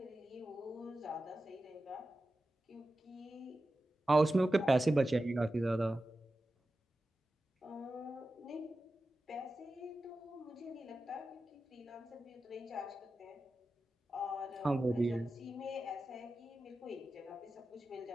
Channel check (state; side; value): normal; both; correlation 0.93